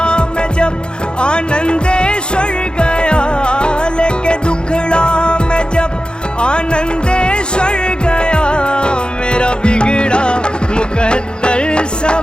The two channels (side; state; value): right; late; 0.050 ms